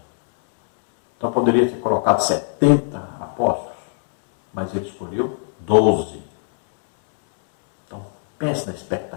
Então poderia ter colocado 70 apóstolos, mas ele escolheu 12. Então pense na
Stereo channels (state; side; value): silent; right; 63 dB below the other